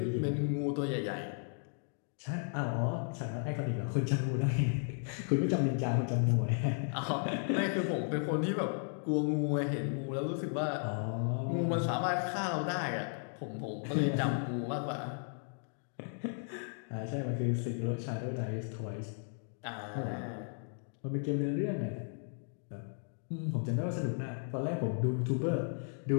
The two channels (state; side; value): silent; right; 54 dB below the other